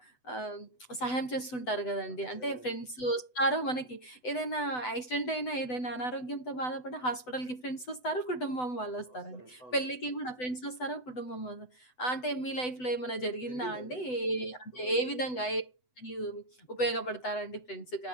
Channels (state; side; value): late; right; 8.0 ms